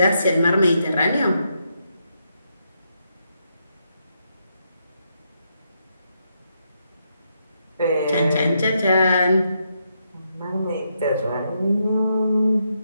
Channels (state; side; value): inverted; both; correlation -0.80